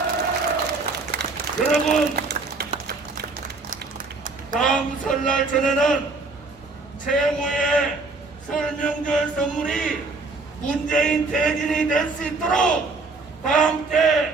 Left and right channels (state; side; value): quieter; left; 3.7 dB